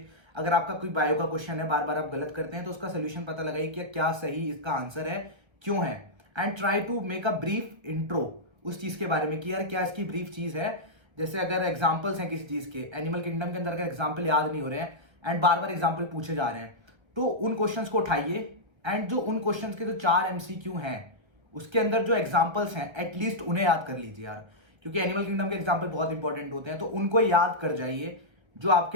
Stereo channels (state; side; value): late; left; 1.3 ms